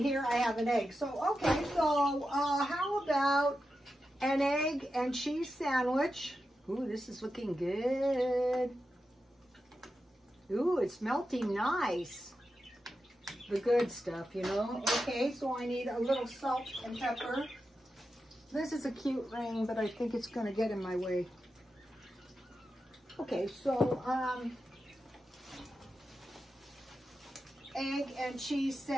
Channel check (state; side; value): normal; both; correlation 0.90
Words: I have an egg. So, okay, so how about an egg and cheese sandwich? Ooh, this is looking good. Ooh, it's melting nice. The good stuff, you know. Okay, so I need a little salt and pepper. This is a cute ring, but I think it's going to get in my way. Okay, so egg and cheese